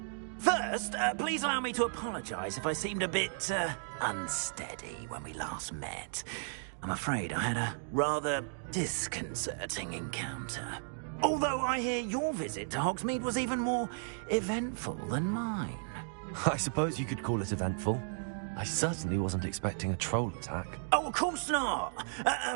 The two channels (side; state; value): left; silent; digital silence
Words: First, please allow me to apologize if I seemed a bit, unsteady when we last met. I'm afraid I had a rather disconcerting encounter. Although I hear your visit to Hogsmeade was even more eventful than mine. I suppose you could call it eventful. I certainly wasn't expecting a troll attack. Oh, of course not.